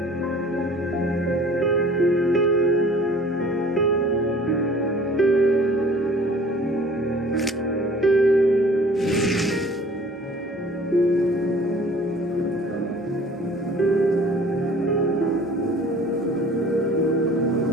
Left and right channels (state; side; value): normal; both; correlation 0.49